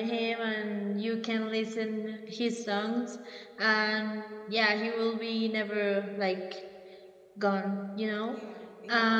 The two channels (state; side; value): identical; both; correlation 1.00